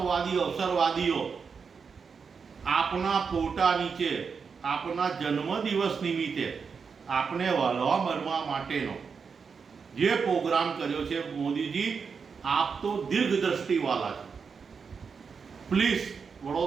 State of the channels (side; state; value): left; quieter; 5.7 dB